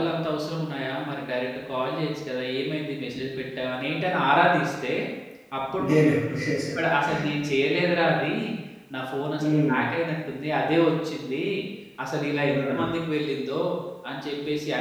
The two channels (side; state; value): both; identical; correlation 1.00